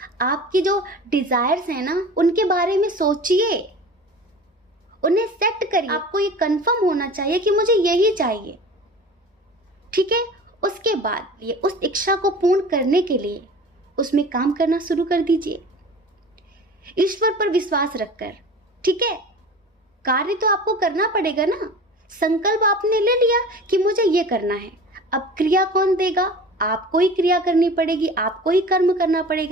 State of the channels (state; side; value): normal; both; correlation 0.38